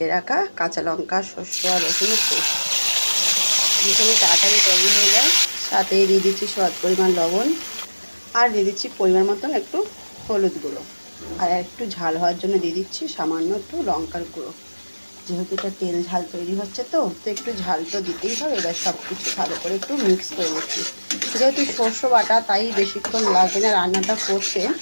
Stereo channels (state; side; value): inverted; both; correlation -1.00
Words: রাখা কাঁচা লঙ্কা, সর্ষে আর রসুনের পেস্ট। ভীষণই তাড়াতাড়ি তৈরি হয়ে যায়। সাথে দিয়ে দিচ্ছি স্বাদ পরিমাণ লবণ, আর দিয়ে দিচ্ছি পরিমাণ মতন একটু হলুদ গুঁড়ো। আর একটু ঝাল হওয়ার জন্য দিয়ে দিচ্ছি সামান্য একটু লঙ্কার গুঁড়ো। যেহেতু এটা তেল ঝাল তৈরি হচ্ছে, তো একটু ঝাল তো দিতেই হবে। এবার সব কিছু ভালো করে একটু মিক্স করে নিচ্ছি। যেহেতু সর্ষে বাটা, তাই বেশিক্ষণ লাগবে না রান্নাটা করতে,